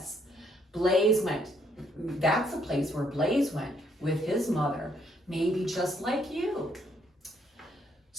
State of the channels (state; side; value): normal; both; correlation 0.70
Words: That's the place where Blaze went with his mother, maybe just like you.